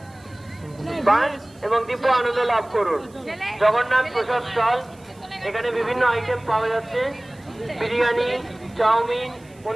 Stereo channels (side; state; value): right; noise; hiss, 29 dB below the sound